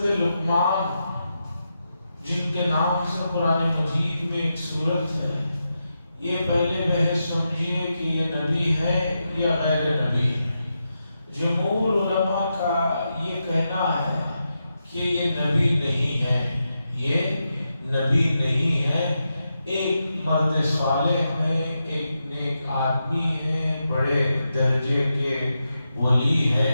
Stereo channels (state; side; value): inverted; both; correlation -0.87